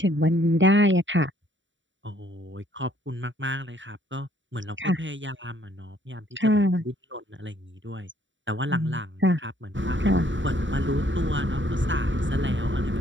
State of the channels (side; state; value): left; late; 0.55 ms